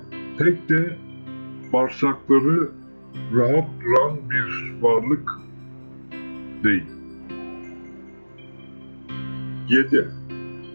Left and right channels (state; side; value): inverted; both; correlation -1.00